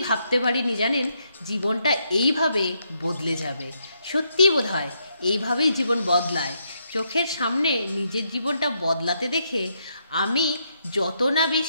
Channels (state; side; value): inverted; both; correlation -0.77